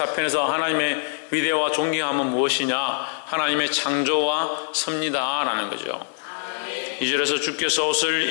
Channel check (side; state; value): right; silent; 63 dB below the other